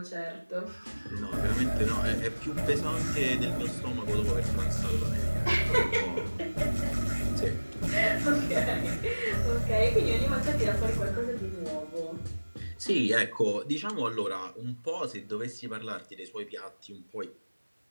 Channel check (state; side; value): inverted; both; correlation -1.00